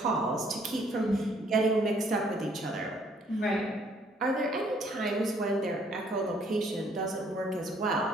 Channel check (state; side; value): normal; both; correlation 0.64